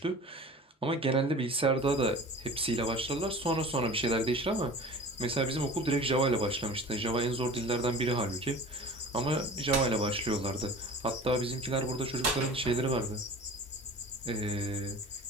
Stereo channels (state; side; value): normal; both; correlation 0.40